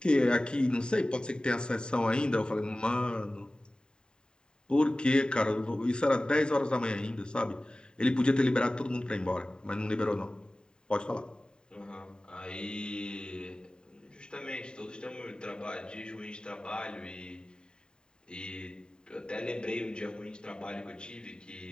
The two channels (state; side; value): late; right; 0.048 ms